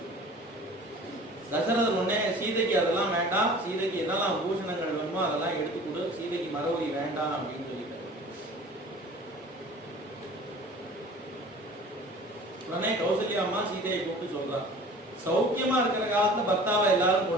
தசரதர் உடனே சீதைக்கு அதெல்லாம் வேண்டாம், சீதைக்கு என்னெல்லாம் பூஷணங்கள் வேணுமோ அதெல்லாம் எடுத்து கொடு, சீதைக்கு மரவரி வேண்டாம் அப்படின்னு சொல்லிட்டார். உடனே கௌசல்யா அம்மா சீதையை கூப்பிட்டு சொல்றான், சௌக்கியமா இருக்கிற காலத்துல பர்த்தாவை எல்லாரும்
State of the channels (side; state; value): both; normal; correlation 0.44